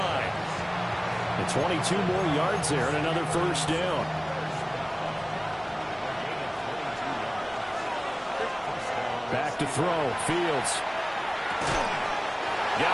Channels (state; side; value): identical; both; correlation 1.00